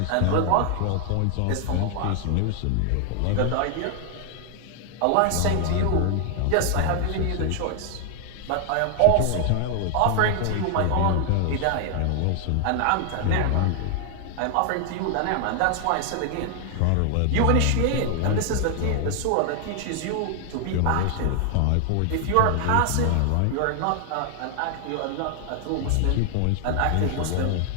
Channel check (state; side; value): different; both; correlation 0.00